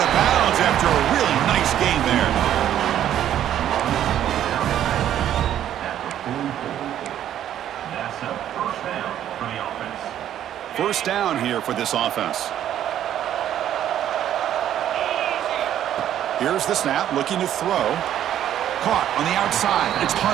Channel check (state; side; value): quieter; left; 11.0 dB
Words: of bounds after a really nice game there. First down here for this offense. Here's the snap, looking to throw. Caught on the outside. It's